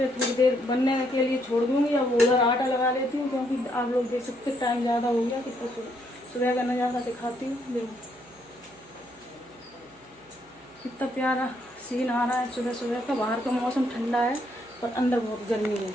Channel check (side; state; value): right; noise; hum, 30 dB below the sound